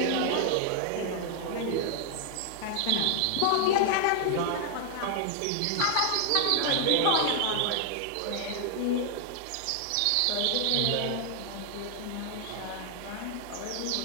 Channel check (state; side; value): different; both; correlation 0.00